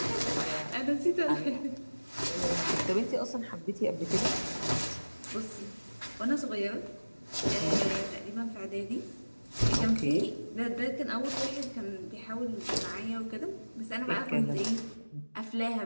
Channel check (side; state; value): both; inverted; correlation -1.00